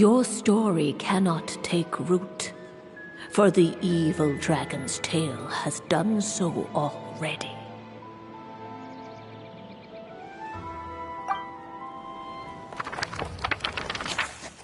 story cannot take root, for the evil dragon's tale has done so already.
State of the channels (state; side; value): identical; both; correlation 1.00